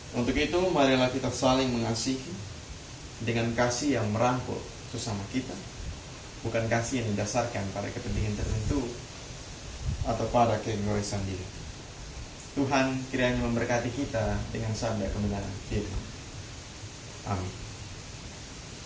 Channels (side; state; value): both; identical; correlation 1.00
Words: Untuk itu, marilah kita saling mengasihi dengan kasih yang merangkul sesama kita, bukan kasih yang didasarkan pada kepentingan tertentu atau pada keegoisan diri. Tuhan kiranya memberkati kita dengan sabda kebenaran firman. Amin.